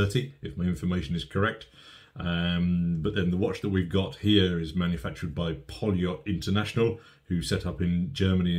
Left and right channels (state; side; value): identical; both; correlation 1.00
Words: if my information is correct. But then the watch that we've got here is manufactured by Poljot International, who set up in